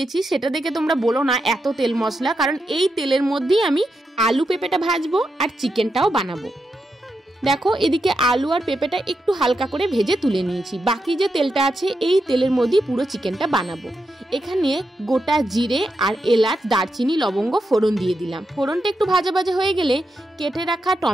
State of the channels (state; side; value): normal; both; correlation 0.85